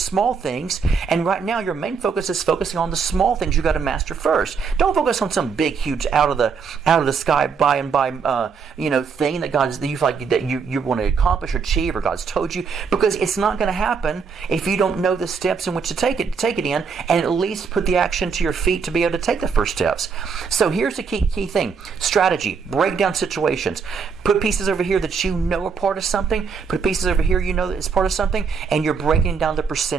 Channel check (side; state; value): left; quieter; 5.8 dB